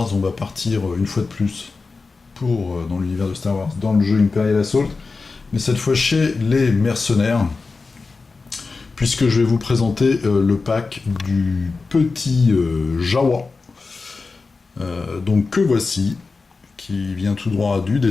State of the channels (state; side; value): quieter; right; 4.1 dB